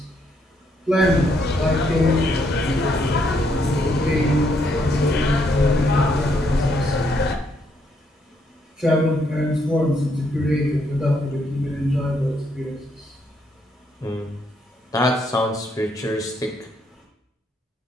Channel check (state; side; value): normal; both; correlation 0.73